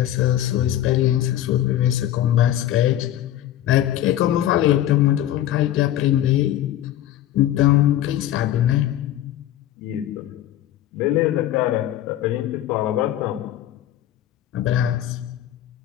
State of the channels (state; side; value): quieter; right; 12.6 dB